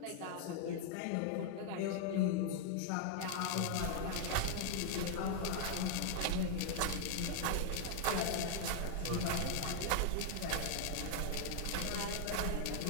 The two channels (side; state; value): both; different; correlation 0.00